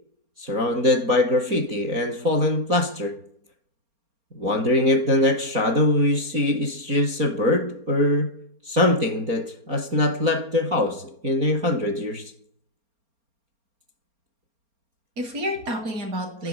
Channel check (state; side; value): late; left; 4.3 ms